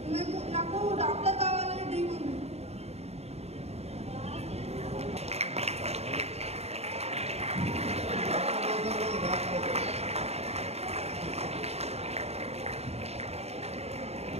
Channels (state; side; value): late; left; 0.30 ms